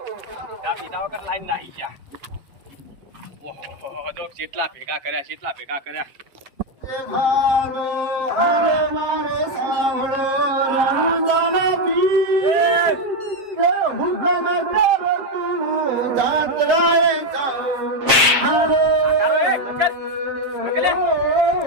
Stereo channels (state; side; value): late; left; 7.5 ms